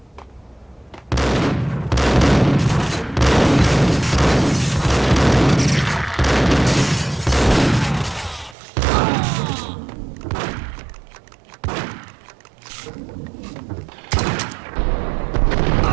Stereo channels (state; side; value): drops out; left; at 8.6 s